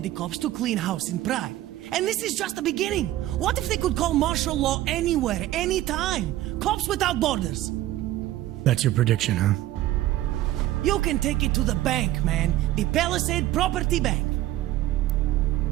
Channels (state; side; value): quieter; left; 14.7 dB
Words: the cops to clean house in Prague. And this is just the beginning. What if they could call martial law anywhere, anytime? Cops without borders. That's your prediction, huh? You can take it to the bank, man. The Palisade Property Bank.